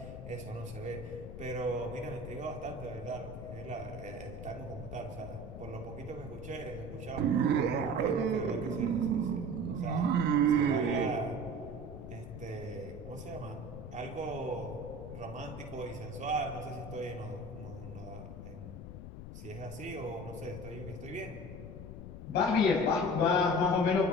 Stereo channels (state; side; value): noise; left; rumble, 10 dB below the sound